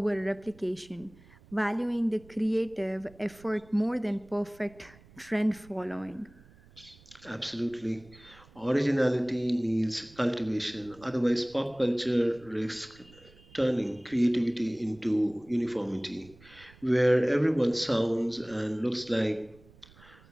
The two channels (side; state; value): right; noise; rumble, 25 dB below the sound